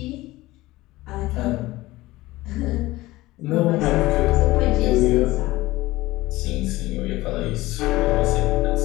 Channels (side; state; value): right; quieter; 18.6 dB